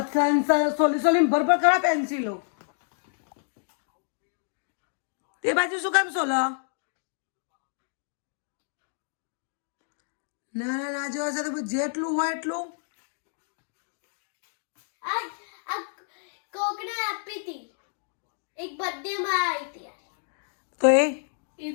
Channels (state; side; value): silent; right; digital silence